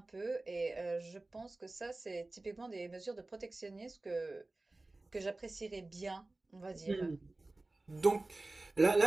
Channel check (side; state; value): left; quieter; 3.0 dB